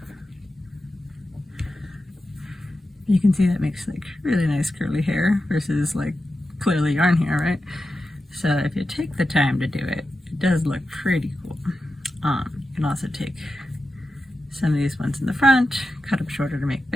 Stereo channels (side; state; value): both; normal; correlation 0.91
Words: You can see that makes like really nice curly hair versus like clearly yarn hair, right? So if you take the time to do it, it does look pretty cool. You can also take some of these ones in the front, cut them shorter to make